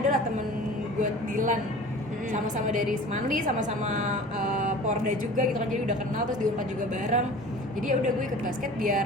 lah temen gue Dilan, sama-sama dari Semanli, sama-sama Porda juga gitu kan, jadi udah kenal, terus di Unpad juga bareng. Jadi ya udah gue ikut basket biar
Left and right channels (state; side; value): normal; both; correlation 0.41